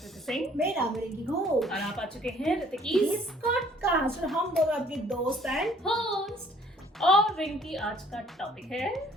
सिंह मेरा नाम है रिंकी घोष और आप आ चुके हैं ऋतिकीज पॉडकास्ट और हम दोनों आपके दोस्त हैं। होस्ट। और रिंकी, आज का टॉपिक है,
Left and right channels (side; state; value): both; normal; correlation 0.59